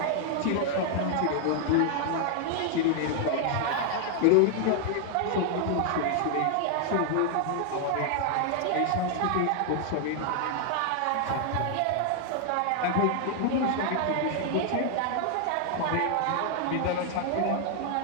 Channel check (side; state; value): both; different; correlation 0.00